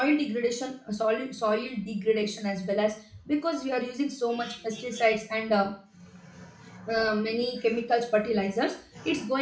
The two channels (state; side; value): identical; both; correlation 1.00